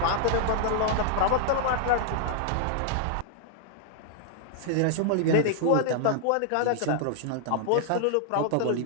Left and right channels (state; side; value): different; both; correlation -0.01